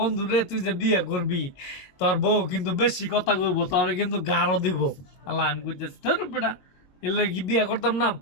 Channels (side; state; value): right; late; 22 ms